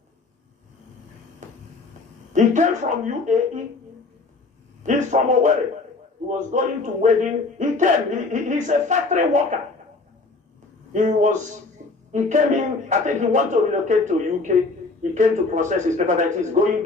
He came from UAE. He's from Nworu. He was going to wedding. He came. He's a factory worker. He came in. I think he wanted to relocate to UK. He came to process his paperwork. He's going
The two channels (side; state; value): right; quieter; 3.7 dB